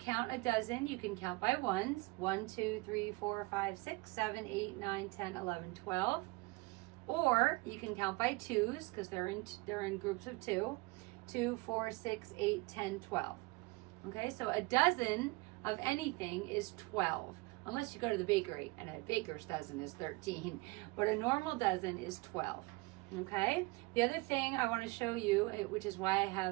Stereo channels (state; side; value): quieter; left; 24.1 dB